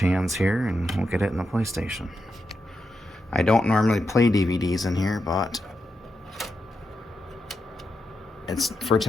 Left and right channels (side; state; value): both; normal; correlation 0.86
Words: here and we'll get it in the PlayStation. I don't normally play DVDs in here, but it's for